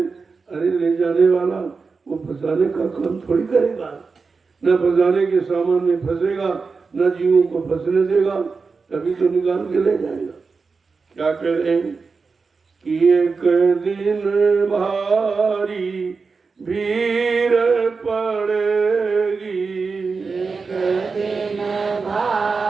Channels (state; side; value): quieter; left; 4.7 dB